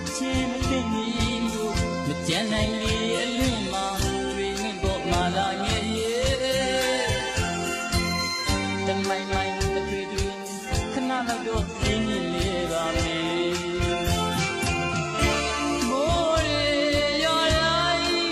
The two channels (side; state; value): both; identical; correlation 1.00